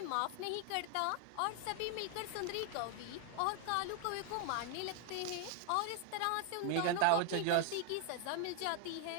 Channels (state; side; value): different; both; correlation 0.00